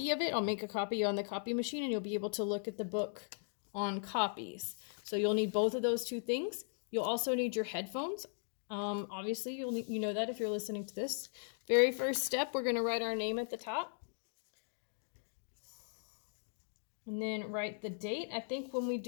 of it. I'll make a copy on the copy machine and you'll be able to look at the book on copies. So you'll need both of those two things. You'll also need your headphones. Obviously, you know that if you're listening to this. Very first step, we're going to write our name at the top. And then write the date. I think when we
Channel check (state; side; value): silent; right; digital silence